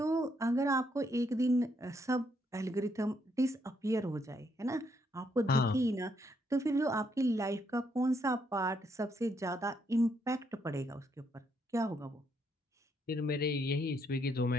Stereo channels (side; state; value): both; normal; correlation 0.74